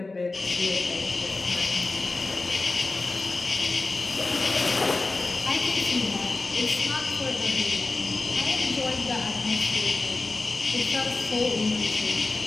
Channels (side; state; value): right; quieter; 3.4 dB